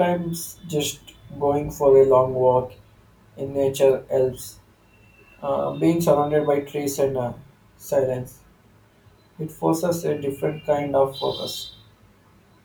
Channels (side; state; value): both; identical; correlation 1.00